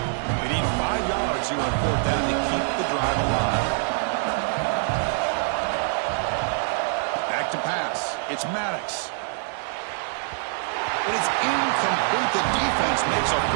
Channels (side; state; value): left; silent; 62 dB below the other